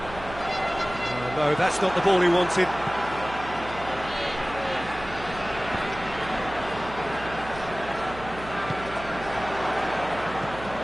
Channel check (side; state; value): right; noise; hum, 14 dB below the sound